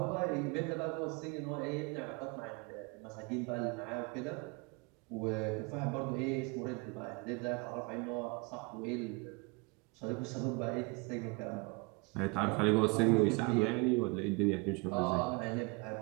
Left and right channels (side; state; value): left; quieter; 28.1 dB